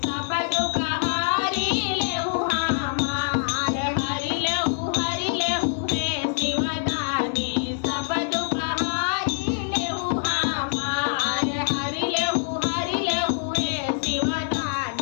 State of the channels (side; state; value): right; silent; 62 dB below the other